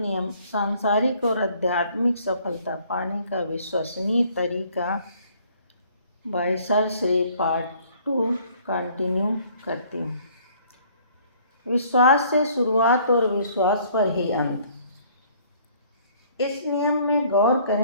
सांसारिक और आध्यात्मिक सफलता पाने का विश्वसनीय तरीका by sir Shri part 2 continue करती हूँ। विश्वास से शुरुआत और विश्वास पर ही अंत। इस नियम में गौर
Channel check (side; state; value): both; inverted; correlation -0.59